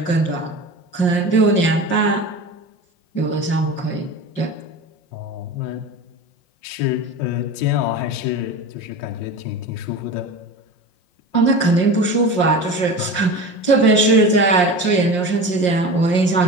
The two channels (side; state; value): right; late; 5.6 ms